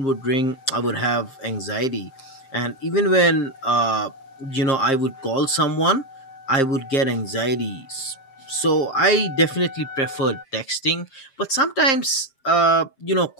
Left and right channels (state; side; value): late; right; 7.4 ms